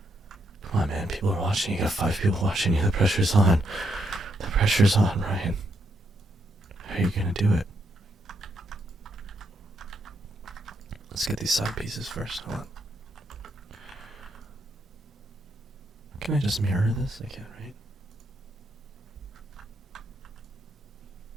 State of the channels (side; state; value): both; normal; correlation 0.78